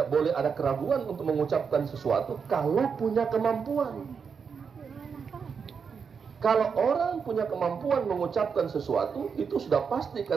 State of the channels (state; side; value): quieter; left; 6.1 dB